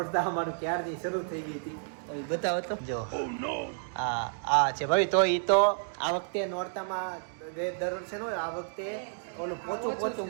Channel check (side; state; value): left; silent; digital silence